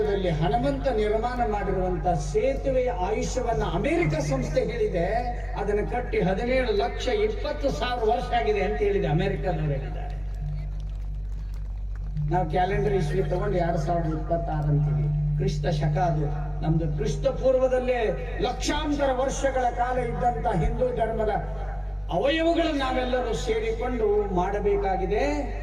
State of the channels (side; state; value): both; identical; correlation 1.00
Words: ಹನುಮಂತ ನಿರ್ಮಾಣ ಮಾಡಿರುವಂತ ಸೇತುವೆಯ ಆಯುಷ್ಯವನ್ನ ಅಮೆರಿಕ ಸಂಸ್ಥೆ ಹೇಳಿದೆ. ಅದನ್ನು ಕಟ್ಟಿ 17,20,000 ವರ್ಷ ಆಗಿದೆ ಅಂತ ಹೇಳಿದೆ ಅಮೆರಿಕದವರು ಹೇಳಿದ್ದಾರೆ. ನಾವು ಕ್ಯಾಲೆಂಡರ್ ಇಸ್ವಿ ತಗೊಂಡು 2026 ಅಂತೀವಿ. ಕ್ರಿಸ್ತ ಶಕ ಅದು. ನಮ್ದು ಕ್ರಿಸ್ತ ಪೂರ್ವದಲ್ಲೇ ಲಕ್ಷಾಂತರ ವರ್ಷಗಳ ಕಾಲ ಇದ್ದಂತ ಹಿಂದೂ ಧರ್ಮದ ಅವಯವಗಳನ್ನು ನಾವೆಲ್ಲರೂ ಸೇರಿಕೊಂಡು ಮಾಡಬೇಕಾಗಿದೆ.